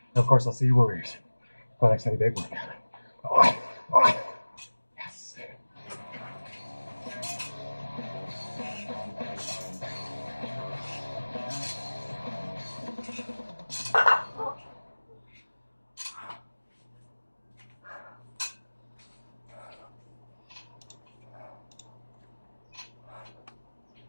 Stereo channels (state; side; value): inverted; both; correlation -1.00